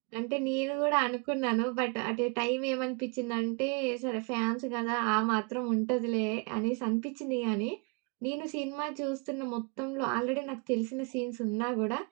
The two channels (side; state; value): left; quieter; 33.8 dB